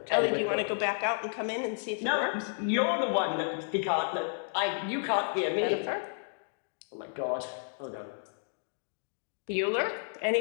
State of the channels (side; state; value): right; silent; digital silence